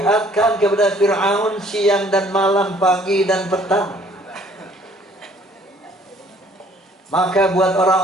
kepada Fir'aun siang dan malam, pagi dan petang. Maka buat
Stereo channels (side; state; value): both; normal; correlation 0.58